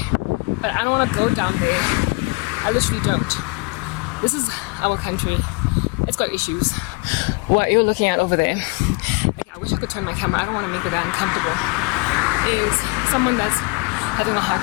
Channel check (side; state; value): right; quieter; 29.9 dB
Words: but I don't want to go down there. I literally don't. This is our country. It's got issues. What you're looking at over there, okay, I wish I could turn my camera. I don't want to make it that uncomfortable. Is someone that's having a